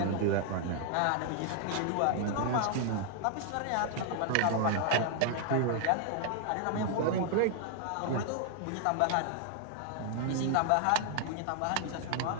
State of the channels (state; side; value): different; both; correlation 0.00